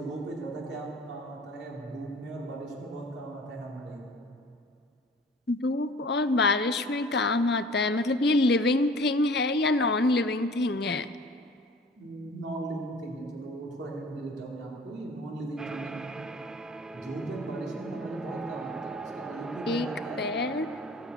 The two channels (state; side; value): normal; both; correlation 0.47